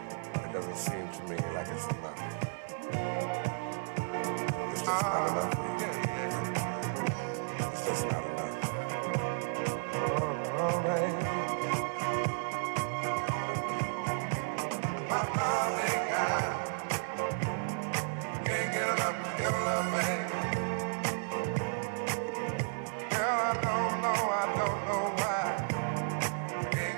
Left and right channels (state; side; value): silent; left; 56 dB below the other